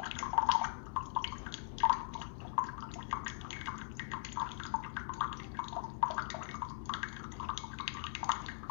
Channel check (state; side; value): silent; right; digital silence